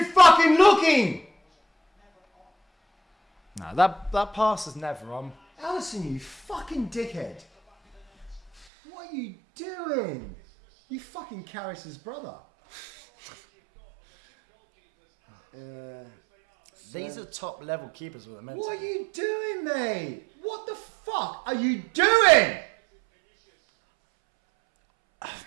fucking looking! No, that pass is never on. Alisson, you fucking dickhead. What are you doing? You fucking Karras' brother. These are top level keepers with a mental. What are you doing, mate? What the fuck are you doing?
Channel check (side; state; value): left; drops out; at 8.7 s